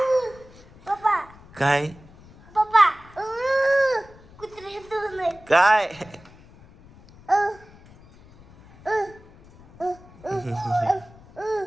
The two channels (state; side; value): noise; left; rumble, 24 dB below the sound